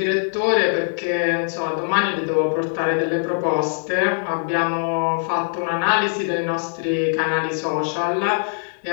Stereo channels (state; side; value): silent; right; digital silence